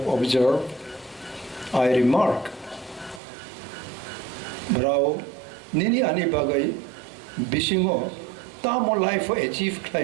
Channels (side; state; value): left; drops out; at 3.2 s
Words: observed, I remark, brau nini ani bagai bisingo tamo life achieve